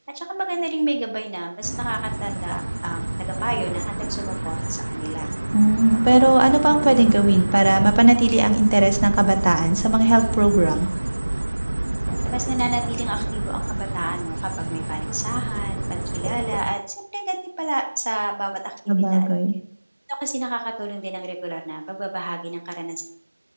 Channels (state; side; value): inverted; both; correlation -1.00